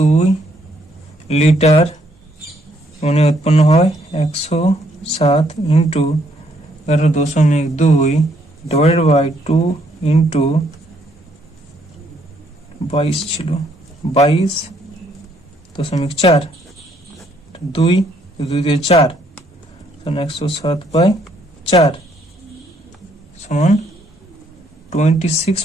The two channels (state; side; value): normal; both; correlation 0.69